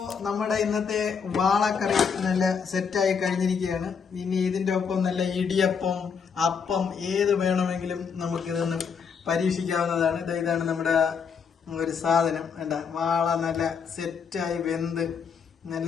നമ്മുടെ ഇന്നത്തെ വാളക്കറി നല്ല സെറ്റായി കഴിഞ്ഞിരിക്കുകയാണ്. ഇനി ഇതിൻ്റെ ഒപ്പം നല്ല ഇടിയപ്പം, അപ്പം ഏത് വേണമെങ്കിലും നമുക്കിതൊന്ന് പരീക്ഷിക്കാവുന്നതാണ്. ഇതാണ് നമ്മുടെ ഒരു സാധനം. വേണ്ട, വാള നല്ല സെറ്റായി വെന്ത് നല്ല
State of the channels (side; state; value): right; quieter; 6.3 dB